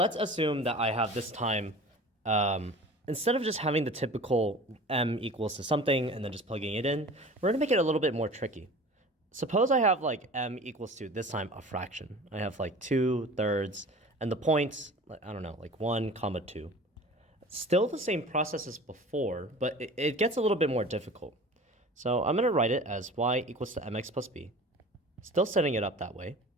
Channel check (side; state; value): both; normal; correlation 0.40